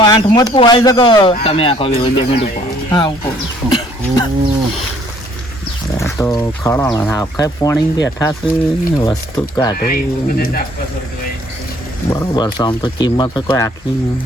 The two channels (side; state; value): both; normal; correlation 0.61